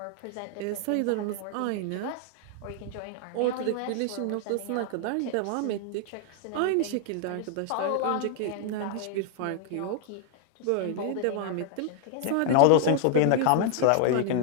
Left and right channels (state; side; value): different; both; correlation 0.00